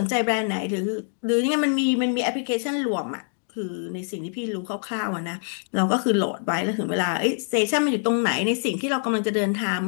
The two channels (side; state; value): right; silent; digital silence